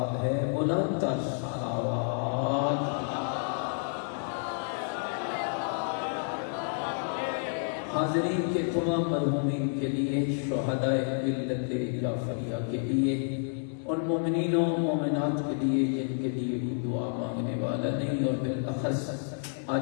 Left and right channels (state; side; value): silent; right; digital silence